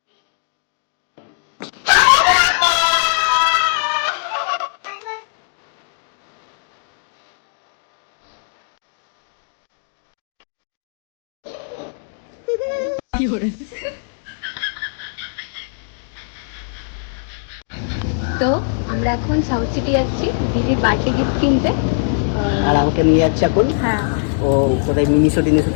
তো আমরা এখন সাউথ সিটি যাচ্ছি দিদির বার্থডে গিফট কিনতে। আর আমাকে নিয়ে যাচ্ছে এখন। হ্যাঁ ও কোথায় মিনিশো থেকে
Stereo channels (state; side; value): silent; right; digital silence